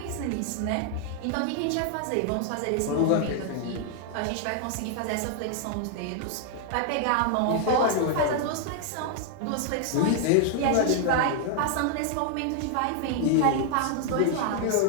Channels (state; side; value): different; both; correlation 0.00